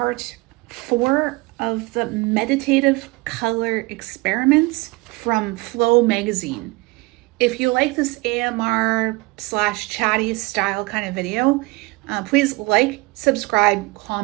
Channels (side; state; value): left; quieter; 24.0 dB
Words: 4 of the meditative color experiments from FlowMagazine. If you like this AMR / chatty style kind of video, please like, subscribe,